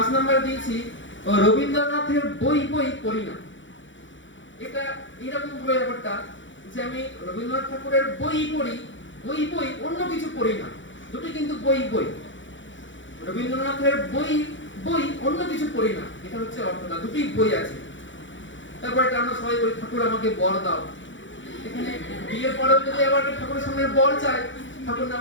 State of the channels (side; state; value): right; late; 0.55 ms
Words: নাম্বার দিয়েছি রবীন্দ্রনাথের বই পড়ি না। এটা এরকম ভাবে ব্যাপারটা যে আমি রবীন্দ্রনাথ ঠাকুরের বই পড়ি, অন্য কিছু পড়ি না, দুটো কিন্তু বই। রবীন্দ্রনাথের বই অন্য কিছু পড়ি না, এটা হচ্ছে অর্থটা, দুটোই বই আছে। তারপর আমরা সবাই বলি ঠাকুর আমাকে বর দাও। এখানে বিয়ের পরেও যদি আবার ঠাকুরের সামনে বর চাই, ঠাকুর